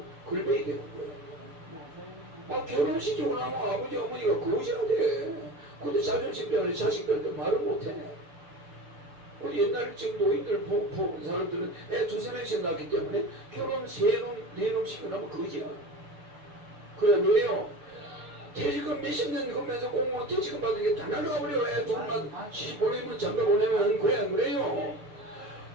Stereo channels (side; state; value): left; late; 6.8 ms